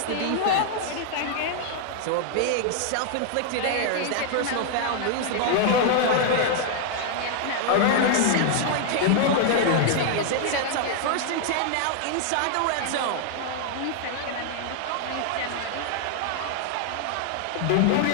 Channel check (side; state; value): both; different; correlation 0.00